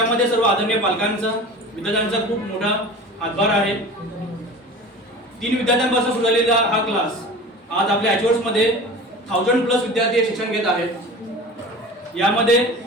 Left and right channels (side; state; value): both; normal; correlation 0.37